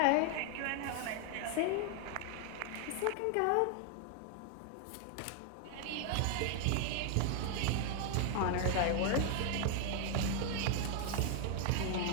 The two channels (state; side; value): different; both; correlation 0.00